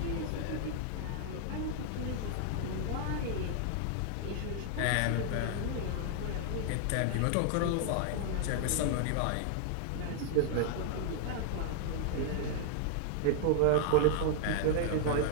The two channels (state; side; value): different; both; correlation 0.00